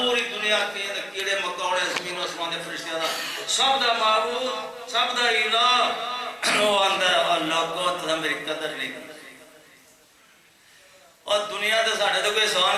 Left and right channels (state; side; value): identical; both; correlation 1.00